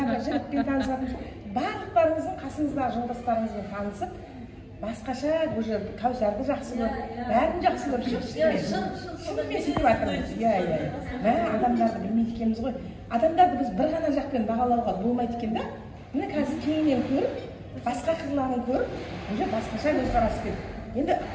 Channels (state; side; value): identical; both; correlation 1.00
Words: танысып жатырмыз. Барлық барлықтарыңыздың қасыңыздағы жолдастарыңызбен танысып, басқаша уже Кәусарды жақсы көріп, бәрін жақсы көріп шығып, шынымен сөйтіп жатырмыз. Мә, адамдарды білмейді екенбіз ғой. Адамдарды біз бір ғана жақпен бағалауға болмайды екен да. Міне қазір кеңінен көріп, басқа қырларын көріп, уже басқаша көзқараспен. Енді